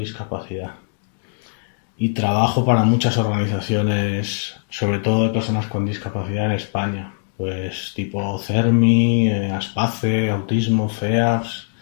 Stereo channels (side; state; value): right; silent; 65 dB below the other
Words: Y trabajo para muchas organizaciones, sobre todo de personas con discapacidad en España, pues tipo CERMI, ASPACE, Autismo, FEAPS,